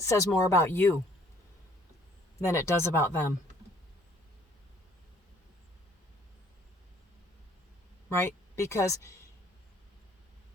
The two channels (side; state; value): both; normal; correlation 0.60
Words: more about you than it does about them. Right? Because